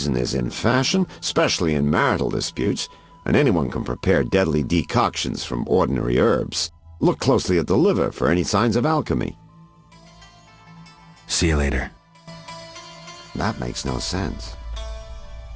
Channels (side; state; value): both; identical; correlation 1.00